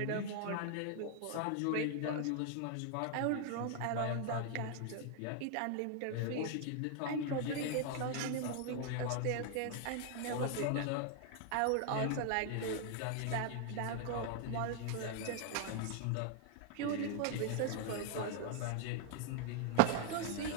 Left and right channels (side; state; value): both; different; correlation 0.00